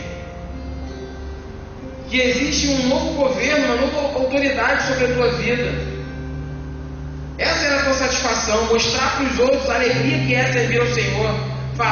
que existe um novo governo, uma nova autoridade sobre a tua vida. Essa era a tua satisfação, mostrar para os outros a alegria que é servir ao Senhor,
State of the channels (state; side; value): identical; both; correlation 1.00